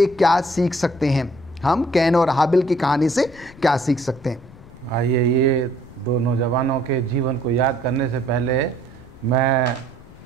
क्या सीख सकते हैं। हम कैन और हाबिल की कहानी से क्या सीख सकते हैं? आइए ये दो नौजवानों के जीवन को याद करने से पहले मैं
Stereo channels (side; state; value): left; noise; rumble, 22 dB below the sound